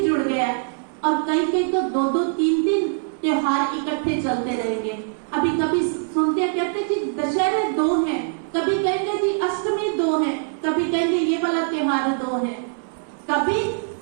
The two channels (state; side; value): silent; left; 64 dB below the other